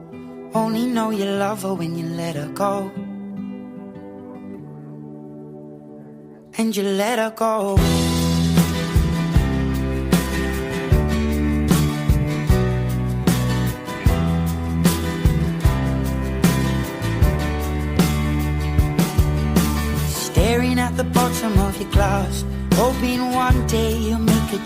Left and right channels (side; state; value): both; identical; correlation 1.00